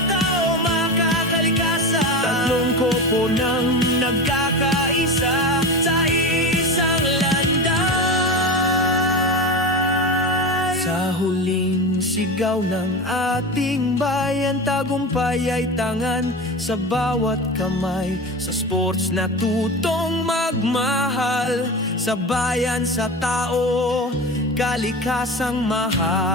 makakalikasan, tatlong kopo ng nagkakaisa sa isang landay. Sa huling sigaw ng ating bayan, tagumpay ay tangan sa bawat kamay. Sa sports na tutong magmahal, sa bayan, sa tao, kalikasang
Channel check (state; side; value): normal; both; correlation 0.26